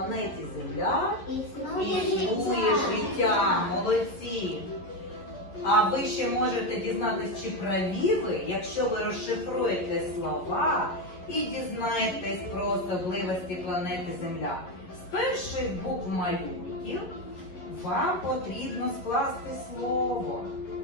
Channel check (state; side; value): late; right; 11 ms